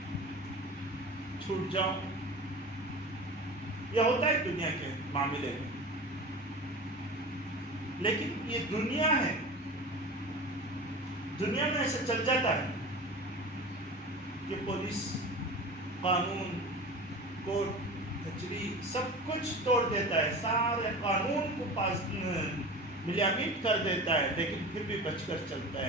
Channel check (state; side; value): normal; both; correlation 0.34